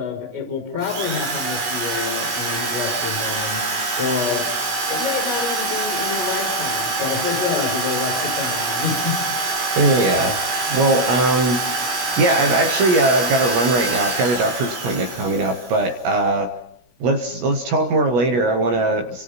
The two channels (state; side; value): late; left; 17 ms